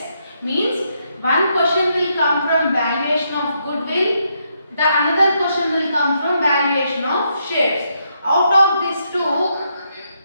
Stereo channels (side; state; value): both; inverted; correlation -0.78